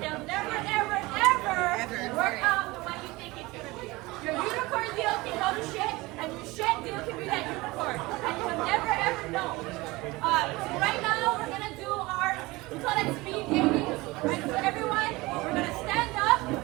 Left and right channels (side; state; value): left; quieter; 21.7 dB